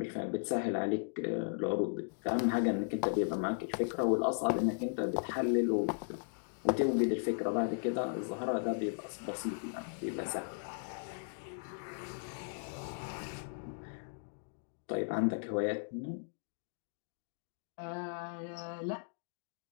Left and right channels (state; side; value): silent; right; digital silence